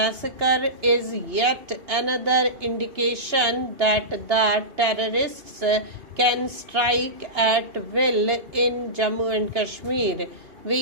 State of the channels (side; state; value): left; late; 2.8 ms